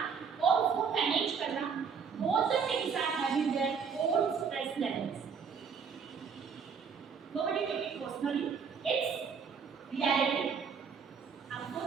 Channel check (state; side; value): quieter; left; 6.2 dB